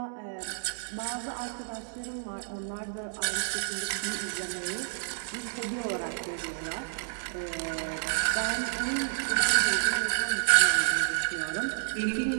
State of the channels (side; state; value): left; silent; digital silence